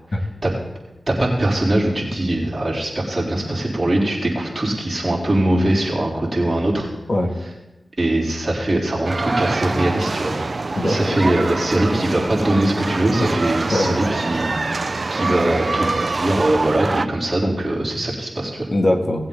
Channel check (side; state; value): both; normal; correlation 0.97